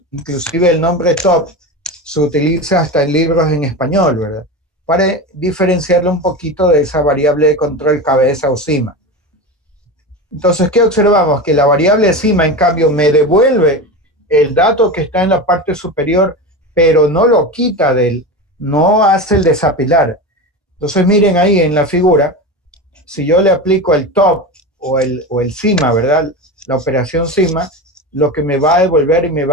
inclusive el nombre top, se utiliza hasta en libros en español, ¿verdad? Para diferenciarlo un poquito de esa variable de control cabeza o cima. Entonces, ¿qué observamos? Que la variable cima, en cambio, me devuelve el dato que está en la parte superior, pero no lo quita no hace el desapilar. Entonces, miren ahí en la figura, si yo le aplico el top o el cima, ¿verdad? La operación cima, lo que me va a devolver y me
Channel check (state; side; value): normal; both; correlation 0.24